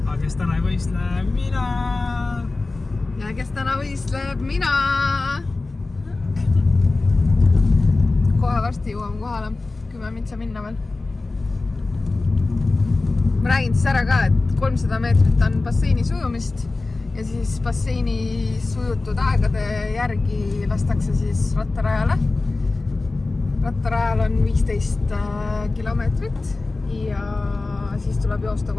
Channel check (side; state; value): right; quieter; 3.4 dB